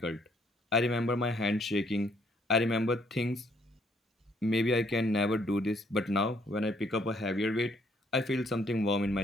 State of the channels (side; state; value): both; normal; correlation 0.68